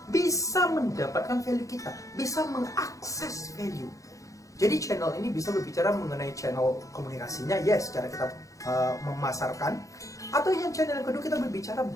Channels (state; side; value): late; right; 0.16 ms